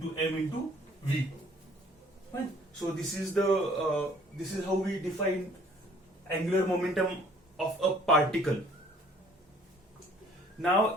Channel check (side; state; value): both; normal; correlation 0.57